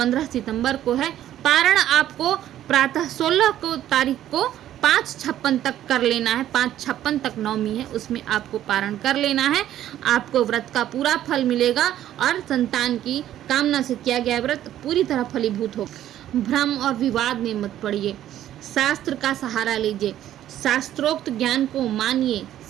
सितंबर को है। पारण आपको प्रातः 16 तारीख को 5:56 तक कर लेना है। 5:56 तक नवमी है, उसमें आपको पारण कर लेना है। आपको व्रत का पूरा फल मिलेगा और संतान की कामना से किया गया व्रत पूरी तरह फलीभूत होगा। भ्रम और विवाद में मत पड़िए, शास्त्र का सहारा लीजिए, शास्त्रोक्त ज्ञान को मानिए,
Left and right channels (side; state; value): left; quieter; 12.1 dB